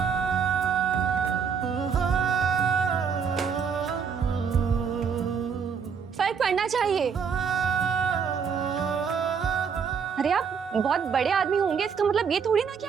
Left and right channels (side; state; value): left; quieter; 6.5 dB